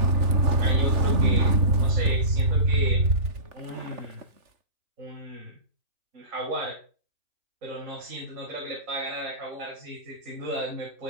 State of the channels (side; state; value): left; late; 3.4 ms